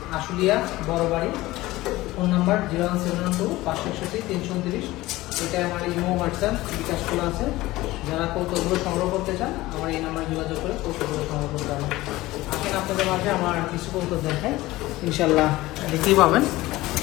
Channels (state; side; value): quieter; right; 18.3 dB